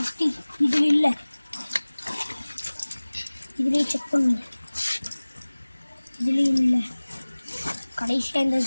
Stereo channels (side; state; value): both; inverted; correlation -1.00